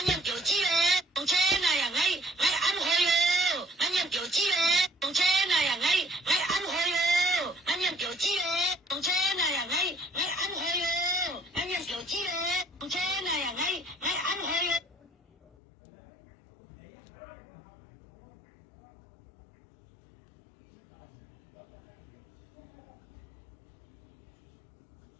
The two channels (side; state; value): right; drops out; at 15.6 s